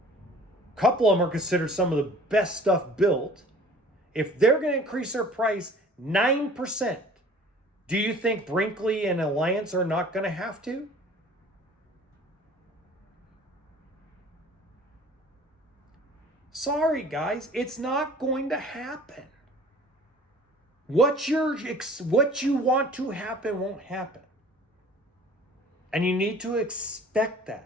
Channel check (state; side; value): normal; both; correlation 0.48